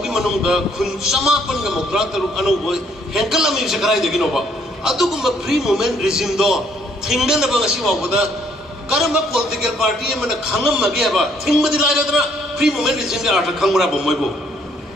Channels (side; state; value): both; normal; correlation 0.67